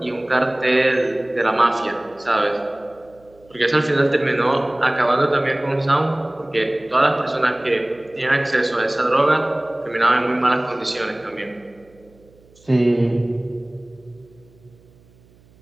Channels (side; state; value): right; noise; hum, 29 dB below the sound